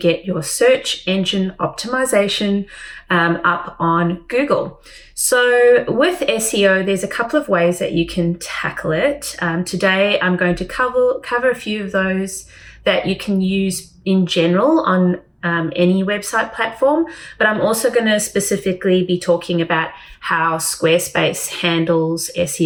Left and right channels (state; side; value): identical; both; correlation 1.00